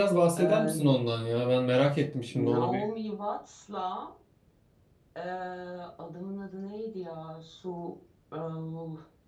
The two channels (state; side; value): identical; both; correlation 1.00